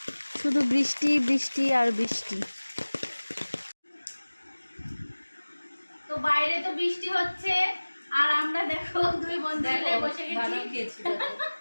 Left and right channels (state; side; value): inverted; both; correlation -1.00